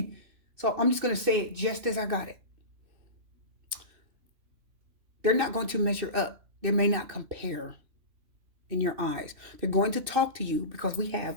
So I'm just going to say it just as I got it. They're not going to measure up. They may not compare in your eyes. They're going to talk to you because we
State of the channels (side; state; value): left; late; 2.6 ms